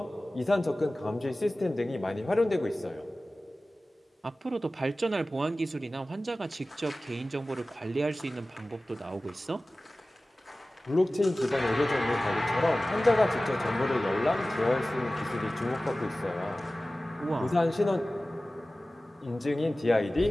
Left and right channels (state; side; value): normal; both; correlation 0.97